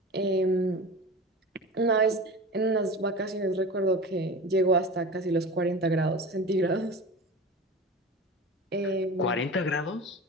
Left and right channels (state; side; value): normal; both; correlation 0.32